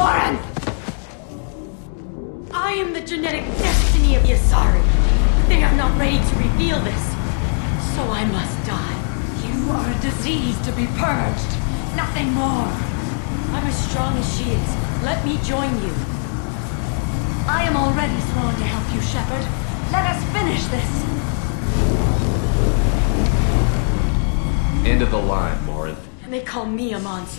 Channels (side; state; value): right; silent; 59 dB below the other